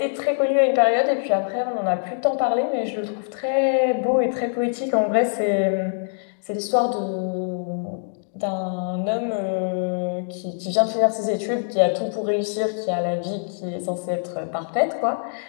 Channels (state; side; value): silent; right; digital silence